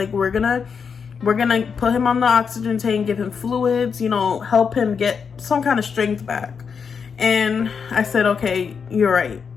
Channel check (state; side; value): quieter; right; 6.2 dB